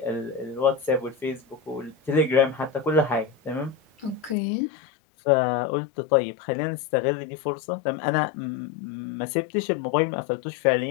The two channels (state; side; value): drops out; right; at 4.4 s